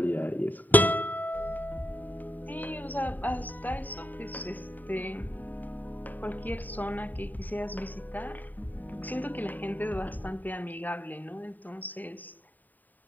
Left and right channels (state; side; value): late; right; 0.086 ms